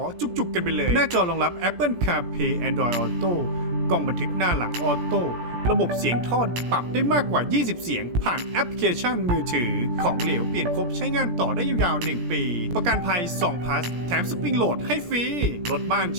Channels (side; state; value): left; late; 17 ms